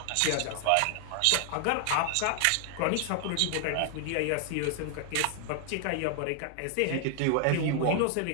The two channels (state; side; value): different; both; correlation 0.00